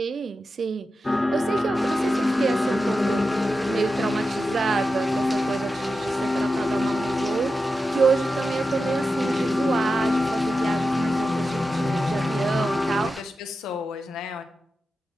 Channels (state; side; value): normal; both; correlation 0.91